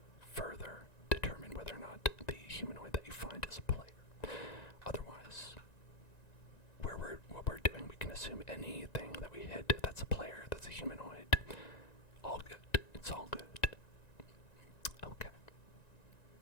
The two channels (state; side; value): late; right; 1.9 ms